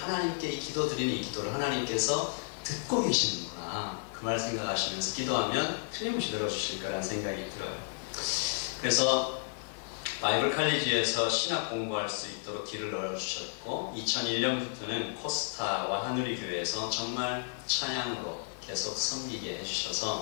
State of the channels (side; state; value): right; silent; digital silence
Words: 이 기도 드리는 이 기도를 하나님께서 듣고 계시는구나, 그 말 생각하시면서 기도하면 틀림없이 들어주실 거라는 생각이 들어요. 그래서 바이블 칼리지에서 신학 공부할 수 있도록 길을 열어주셨고, 2001년부터는 코스타와 하누리 교회에서 정말 찬양으로 계속 섬기게